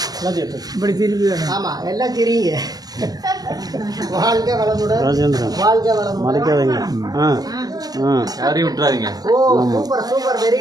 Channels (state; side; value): late; left; 0.19 ms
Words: இப்படி திரும்பி. ஆமாம், எல்லாம் தெரியுங்க. வாழ்க வளமுடன், வாழ்க வளமுடன். யாரையும் விட்டுறாதீங்க. ஓ, சூப்பர் சூப்பர், வெரி